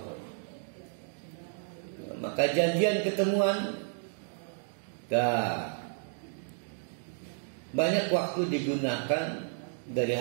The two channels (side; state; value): left; silent; digital silence